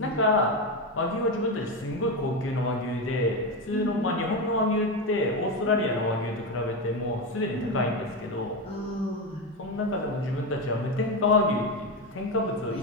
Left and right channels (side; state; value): both; normal; correlation 0.14